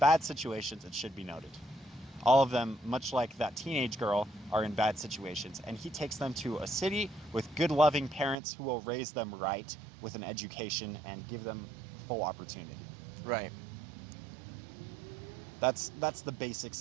situations, it should be noted. All of them, much like that teenage girl, are in bad situations. And he takes them to a city with good, loving parents who will raise them right with an education and give them full opportunity. Right. That's the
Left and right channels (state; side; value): drops out; left; at 8.3 s